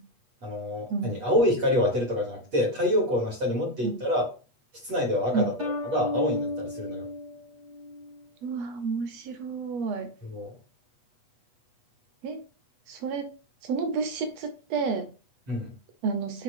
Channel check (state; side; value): late; left; 8.2 ms